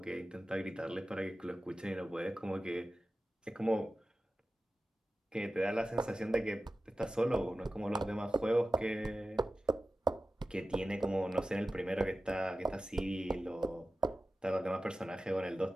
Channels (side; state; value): both; normal; correlation 0.95